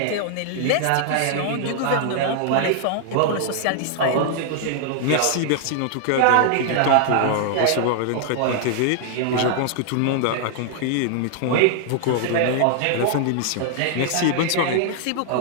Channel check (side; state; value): both; different; correlation -0.01